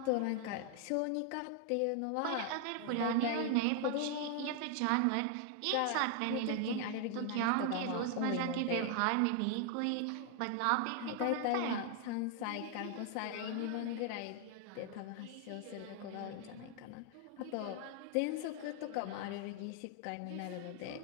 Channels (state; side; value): different; both; correlation 0.00